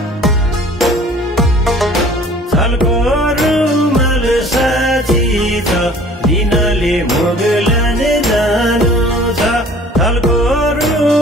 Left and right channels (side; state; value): both; normal; correlation 0.50